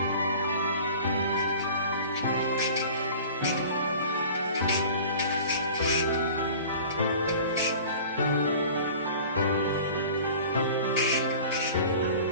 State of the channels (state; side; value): inverted; both; correlation -0.42